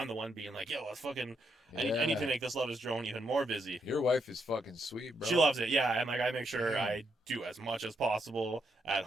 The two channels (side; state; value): both; normal; correlation 0.79